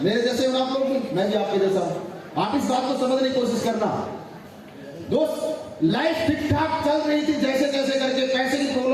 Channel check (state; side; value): identical; both; correlation 1.00